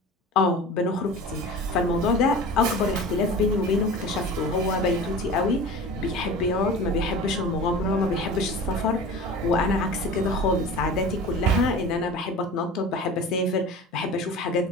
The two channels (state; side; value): normal; both; correlation 0.36